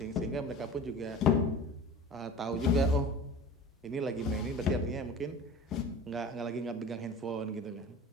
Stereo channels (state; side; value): normal; both; correlation 0.38